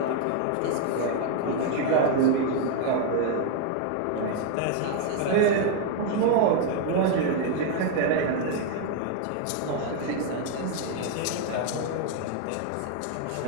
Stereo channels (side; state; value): both; different; correlation 0.00